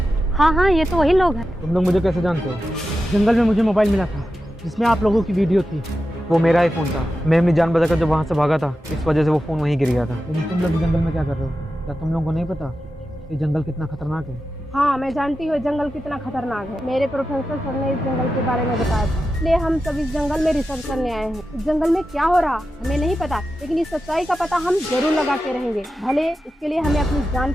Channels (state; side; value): normal; both; correlation 0.91